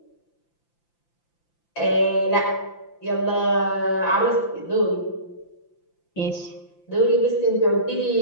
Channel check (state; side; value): late; right; 5.8 ms